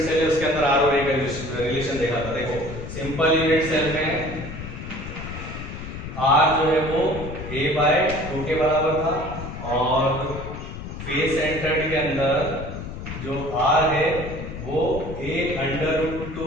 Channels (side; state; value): left; noise; rumble, 9 dB below the sound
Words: सेल है उसके अंदर R और A का रिलेशन देखा था। देखो सिंपल यूनिट सेल में R जो है वो A/2 के बराबर था, और फेस सेंटर्ड के अंदर जो R है वो